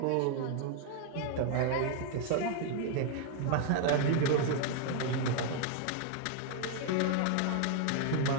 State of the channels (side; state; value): both; different; correlation 0.00